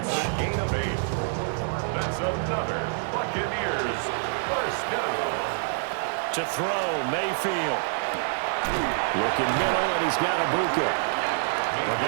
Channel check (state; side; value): silent; left; 60 dB below the other